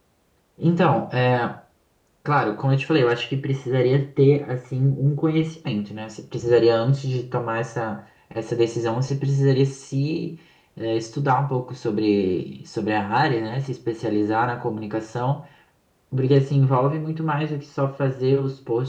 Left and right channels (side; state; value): both; identical; correlation 1.00